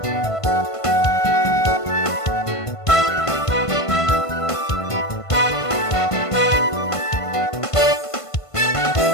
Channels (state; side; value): late; right; 1.5 ms